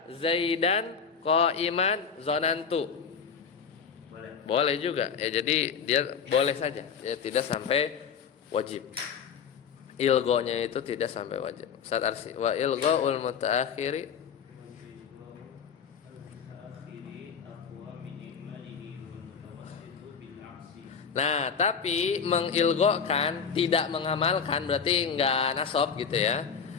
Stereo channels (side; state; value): right; quieter; 6.6 dB